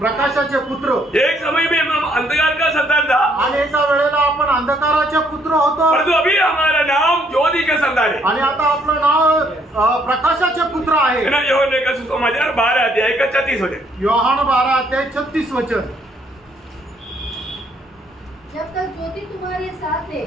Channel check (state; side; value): normal; both; correlation 0.68